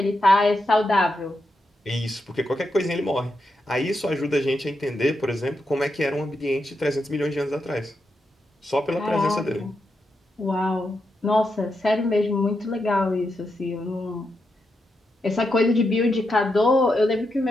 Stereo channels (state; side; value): normal; both; correlation 0.85